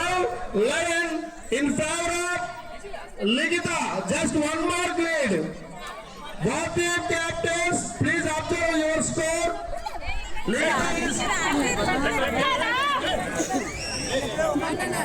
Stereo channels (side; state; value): both; identical; correlation 1.00